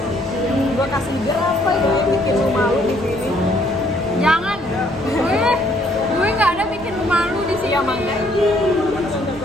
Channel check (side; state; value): left; noise; rumble, 20 dB below the sound